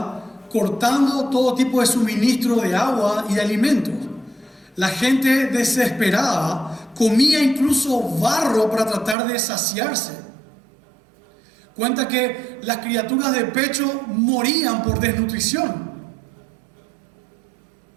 cortando todo tipo de suministro de agua y de alimentos. La gente desesperada comía incluso barro para tratar de saciarse. Cuenta que las criaturas de pecho morían por desnutrición.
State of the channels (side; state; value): left; drops out; at 9.2 s